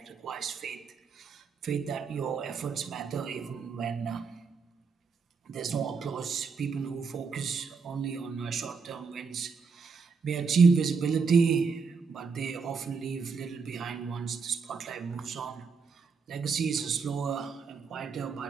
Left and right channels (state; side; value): quieter; left; 5.2 dB